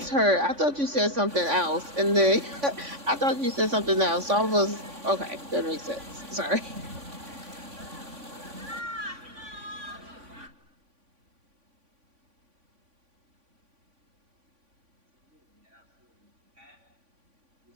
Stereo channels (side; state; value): left; late; 3.5 ms